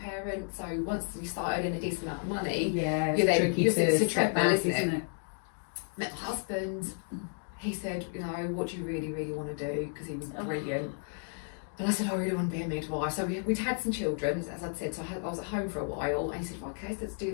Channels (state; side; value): silent; right; 56 dB below the other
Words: so once you start earning a decent amount of money, it's a treadmill, isn't it? Met my husband. He said, what do you really, really want to do? Because he was brilliant. And I said, I really want to be a midwife. So we'd had some children, as I'd said, so I was at home for a while, and he said, okay, so let's do